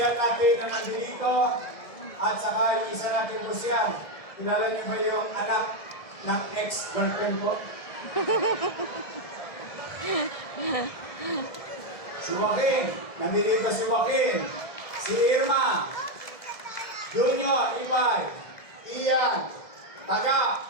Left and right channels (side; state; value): right; late; 1.7 ms